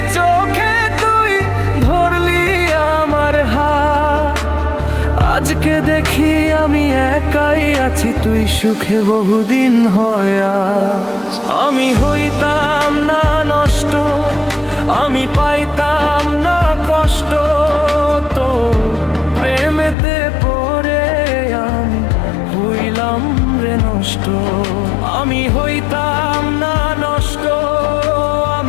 চোখে তুই, ধরলি আমার হাত, আজকে দেখি আমি একাই আছি, তুই সুখে বহুদিন হয় আজ। আমি হইতাম না নষ্ট, আমি পাইতাম না কষ্ট, তো প্রেমেতে পড়ে আমি হইলাম রে নষ্ট। আমি হইতাম না নষ্ট,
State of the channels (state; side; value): drops out; right; at 20.0 s